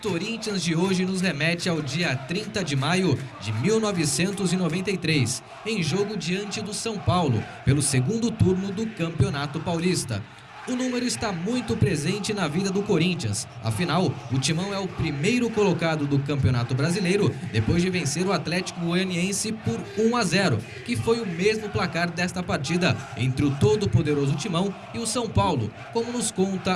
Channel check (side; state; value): both; identical; correlation 1.00